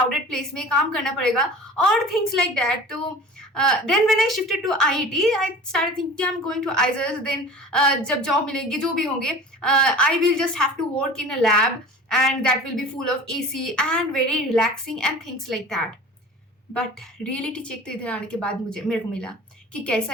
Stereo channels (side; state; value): both; normal; correlation 0.40